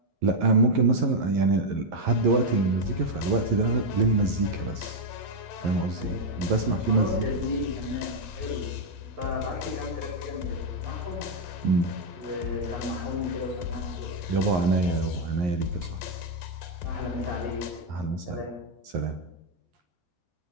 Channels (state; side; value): late; left; 11 ms